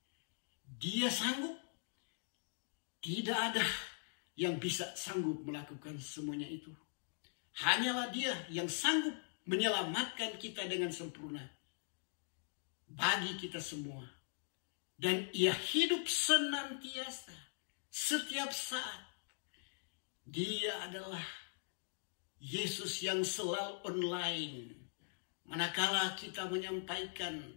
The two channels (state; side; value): silent; right; digital silence